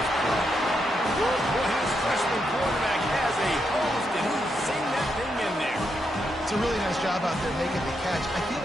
play. Boy, his freshman quarterback has a host, and he's seen that thing in there. It's a really nice job out there making the catch. I feel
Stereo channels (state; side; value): normal; both; correlation 0.81